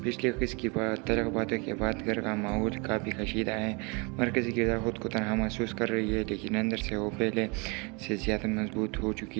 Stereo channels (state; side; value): quieter; left; 30.4 dB